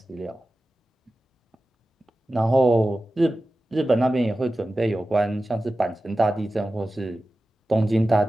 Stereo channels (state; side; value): normal; both; correlation 0.94